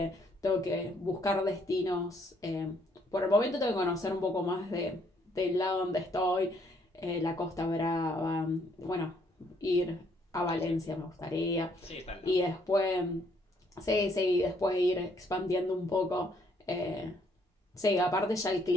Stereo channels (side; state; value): both; normal; correlation 0.68